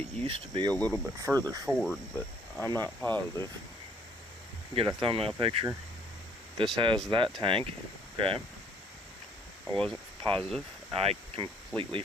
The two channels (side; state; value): both; normal; correlation 0.62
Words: used to be a little bit further forward, but I'm not positive. Get a thumbnail picture. This has that tank. Okay. I wasn't positive. I completely